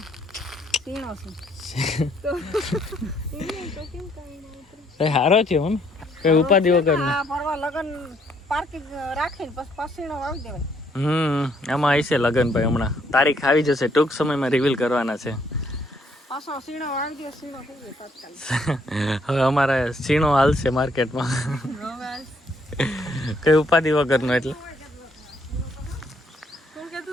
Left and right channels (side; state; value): both; normal; correlation 0.69